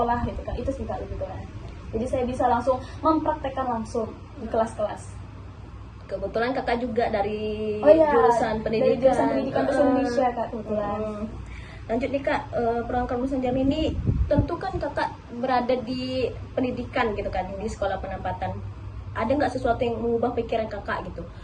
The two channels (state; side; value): identical; both; correlation 1.00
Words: gitu kan. Itu sih Kak lebih kurang. Jadi saya bisa langsung mempraktekkan langsung di kelas-kelas. Kebetulan Kakak juga dari Oh iya, jurusan dari pendidikan. jurusan pendidikan bahasa Indonesia Kak kebetulan. Lanjut nih Kak, program kampus mengajar ini tentu kan Kakak berada di pendidikan gitu kan, di sekolah penempatan. Ada nggak sesuatu yang mengubah pikiran Kakak gitu,